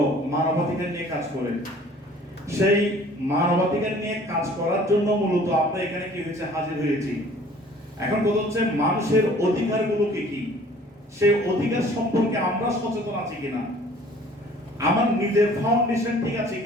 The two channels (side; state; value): both; normal; correlation 0.52